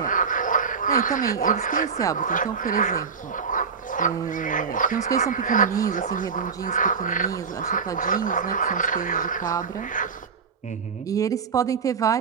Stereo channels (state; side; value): quieter; left; 5.8 dB